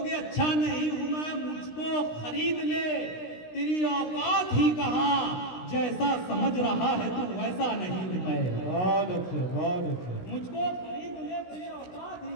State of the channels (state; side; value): late; right; 16 ms